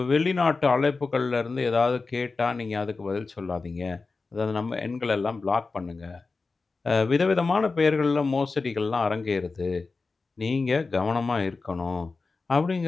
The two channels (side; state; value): right; quieter; 4.0 dB